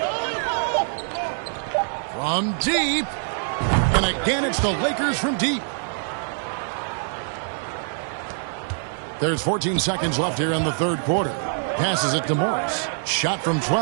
From deep. And again, it's the Lakers from deep. There's 14 seconds left here in the third quarter. Passes it to Morris. Shot from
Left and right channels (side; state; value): left; silent; digital silence